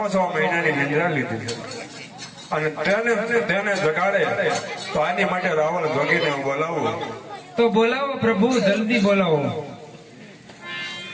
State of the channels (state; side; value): identical; both; correlation 1.00